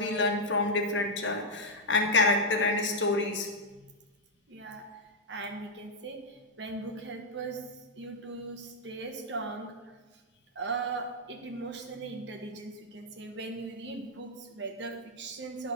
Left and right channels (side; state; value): both; normal; correlation -0.03